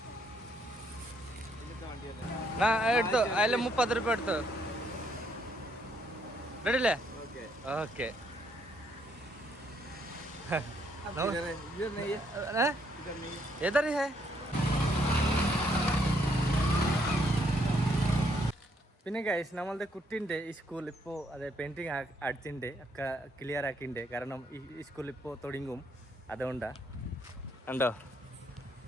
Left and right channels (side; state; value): both; normal; correlation 0.71